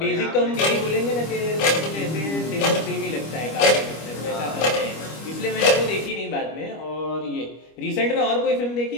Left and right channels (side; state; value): right; late; 25 ms